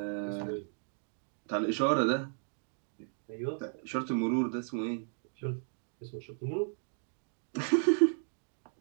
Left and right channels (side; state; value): left; silent; digital silence